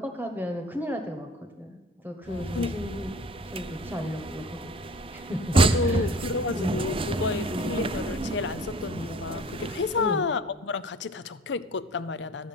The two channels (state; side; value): normal; both; correlation 0.44